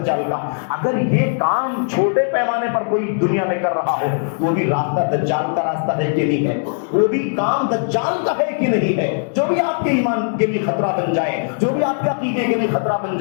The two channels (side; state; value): right; silent; digital silence